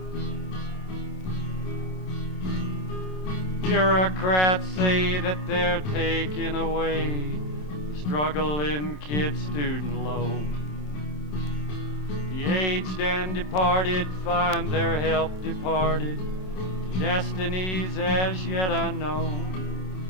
Bureaucrats say that they're taking away the struggling kid student loan. The aged and departed find their help departed to destinies as yet unknown.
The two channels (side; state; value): right; late; 27 ms